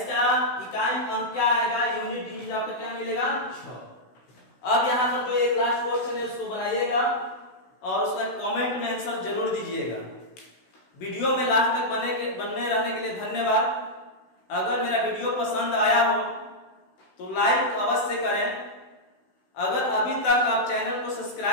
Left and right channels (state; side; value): late; right; 16 ms